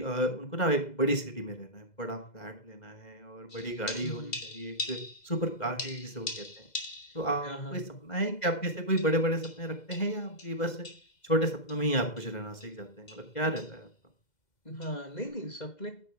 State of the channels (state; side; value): late; right; 2.0 ms